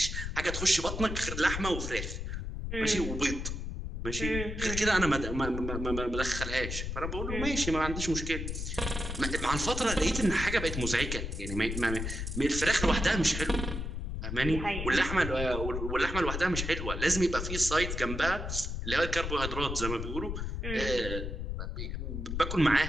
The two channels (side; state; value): left; noise; rumble, 4 dB below the sound